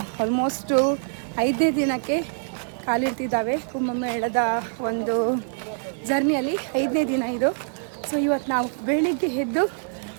ಆಲ್ಮೋಸ್ಟು 5ನೇ ದಿನಕ್ಕೆ ಕಾಲಿಡ್ತಿದ್ದಾವೆ ಕುಂಭಮೇಳದ ಒಂದು ಜರ್ನಿಯಲ್ಲಿ. 5ನೇ ದಿನ ಇದು. ಸೊ ಇವತ್ತು ನಾವು ಬೆಳಿಗ್ಗೆ ಎದ್ದು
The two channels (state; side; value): silent; left; 59 dB below the other